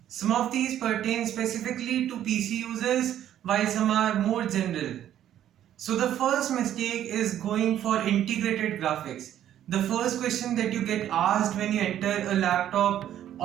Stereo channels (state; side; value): quieter; left; 11.2 dB